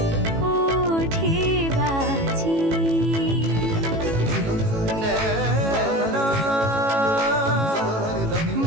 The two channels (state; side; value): late; left; 18 ms